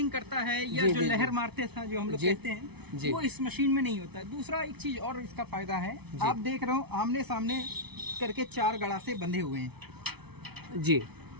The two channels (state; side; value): late; left; 0.98 ms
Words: करता है या जो लहर मारते था जो हम लोग कहते हैं, वो इस मशीन में नहीं होता। दूसरा एक चीज और इसका फायदा है, आप देख रहे हो आमने सामने करके 4 गड़ासे बंधे हुए हैं जी।